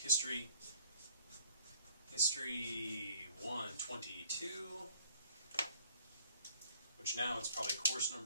History 122, which now it's probably course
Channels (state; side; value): inverted; both; correlation -0.56